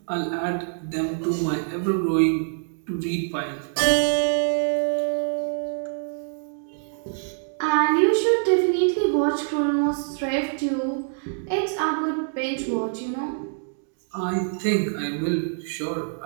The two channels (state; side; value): silent; left; digital silence